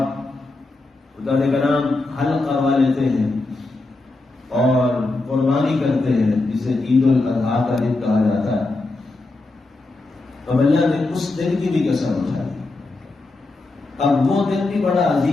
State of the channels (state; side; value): quieter; right; 3.2 dB